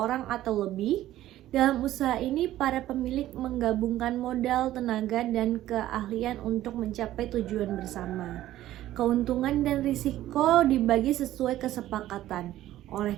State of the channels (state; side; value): quieter; left; 14.0 dB